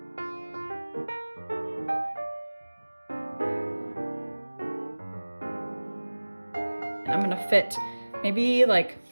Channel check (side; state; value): both; inverted; correlation -1.00